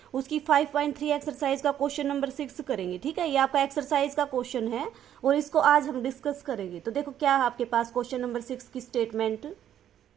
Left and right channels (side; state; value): left; quieter; 10.5 dB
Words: उसकी 5.3 एक्सरसाइज का क्वेश्चन नंबर 6 करेंगे। ठीक है, ये आपका एक्सरसाइज का क्वेश्चन है और इसको आज हम डिस्कस करेंगे। तो देखो क्या है आपके पास क्वेश्चन नंबर 6 की स्टेटमेंट।